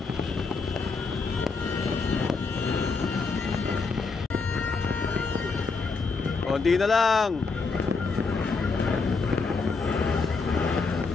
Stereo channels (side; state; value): right; quieter; 4.4 dB